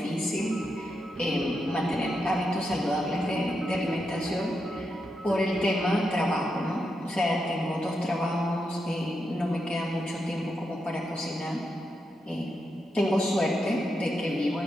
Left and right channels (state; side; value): normal; both; correlation 0.85